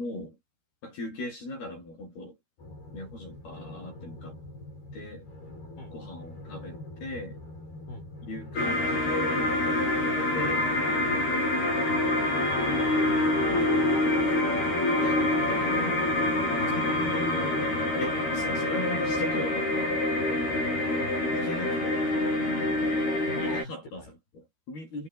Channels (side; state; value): right; late; 13 ms